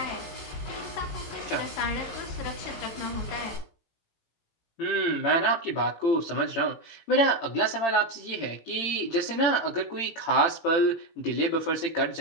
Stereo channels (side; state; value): right; late; 18 ms